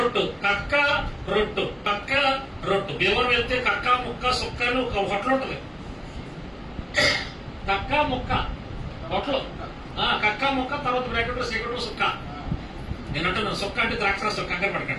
కక్క రొట్టు, కక్క రొట్టు. భీమవరం వెళ్తే కక్క ముక్క సుక్క అని ఒక హోటల్ ఉంటుంది. కక్క ముక్క హోటల్, కక్క ముక్క, తర్వాత బ్రాకెట్ సిగరెట్ సుక్క. నేను అంటున్నాను సుక్క అంటే ద్రాక్ష కంగారు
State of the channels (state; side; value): identical; both; correlation 1.00